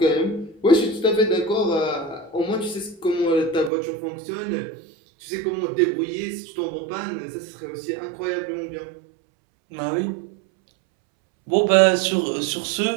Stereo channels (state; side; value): drops out; left; at 3.7 s